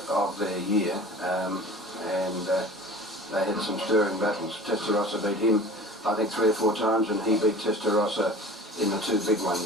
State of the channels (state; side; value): normal; both; correlation 0.41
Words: of their year, and they had some stirring battles. Testarossa beat him, I think, 3 or 4 times, and he beat Testarossa in the 2 big